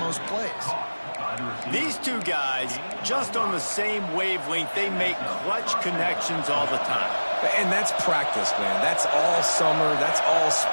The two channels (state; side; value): inverted; both; correlation -1.00